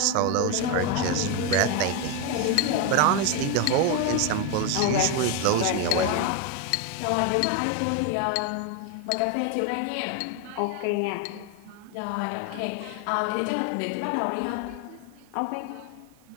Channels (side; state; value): both; different; correlation 0.02